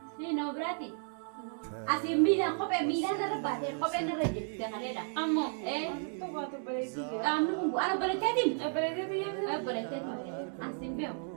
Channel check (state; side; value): silent; left; 56 dB below the other